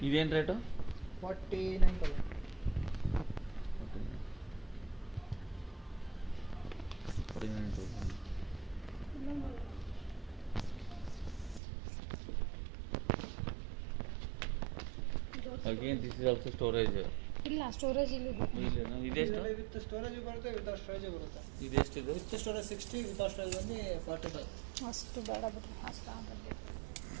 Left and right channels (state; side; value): drops out; left; at 11.6 s